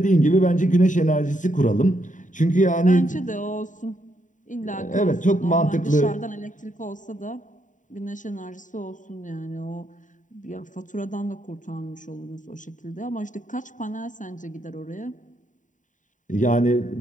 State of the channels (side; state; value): right; late; 0.37 ms